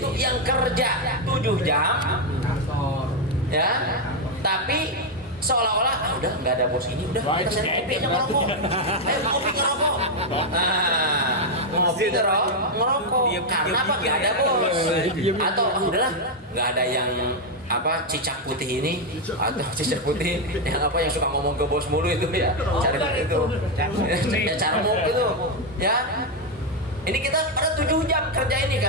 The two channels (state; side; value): normal; both; correlation 0.02